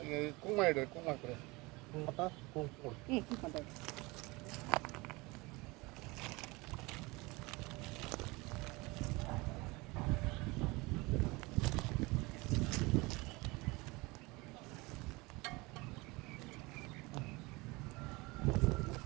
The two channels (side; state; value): left; quieter; 24.1 dB